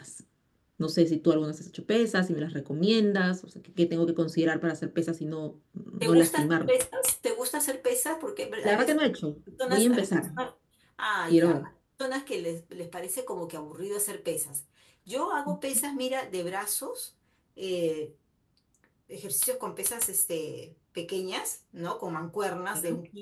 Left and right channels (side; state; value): both; identical; correlation 1.00